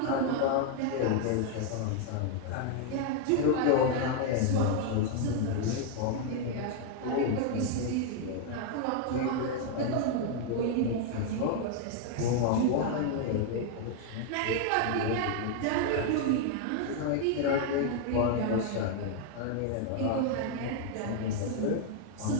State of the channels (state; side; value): different; both; correlation 0.00